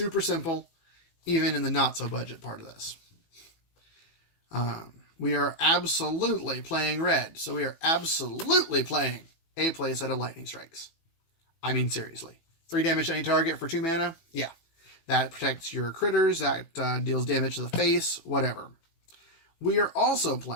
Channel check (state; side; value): late; right; 18 ms